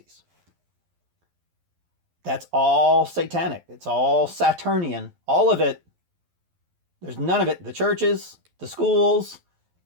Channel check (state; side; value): late; left; 11 ms